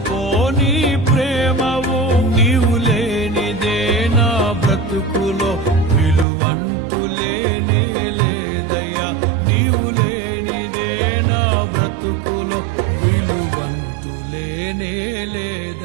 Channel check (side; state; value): left; drops out; at 6.2 s